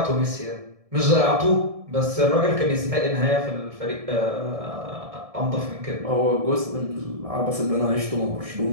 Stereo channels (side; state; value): left; late; 1.7 ms